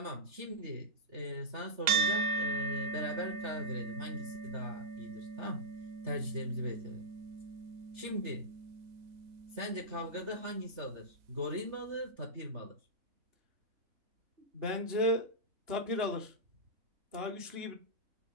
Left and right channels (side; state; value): left; late; 3.3 ms